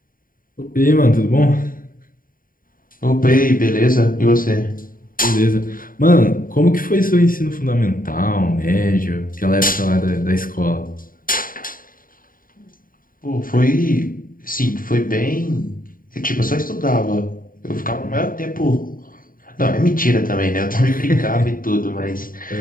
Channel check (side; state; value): right; late; 0.41 ms